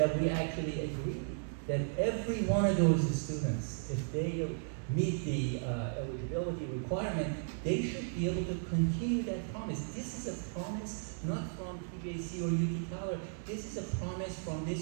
we actually agreed that every one of those students, if they meet the eligibility requirement, they should be able to continue that promise. This is a promise not from TJC or UT Tyler. This is a promise from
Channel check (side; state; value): left; silent; digital silence